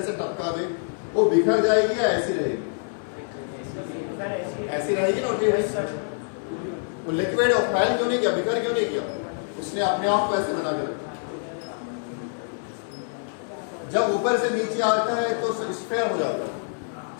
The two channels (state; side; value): silent; right; digital silence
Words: से टपका दे, वो बिखर जाएगी या ऐसी रहेगी, ऐसी रहेगी ना, वो लिक्विड और फैल क्यों नहीं किया, बिखर क्यों नहीं किया, उसने अपने आप को ऐसे बना के रखा। जब ऊपर से नीचे आता है तो स्फीयर हो जाता है,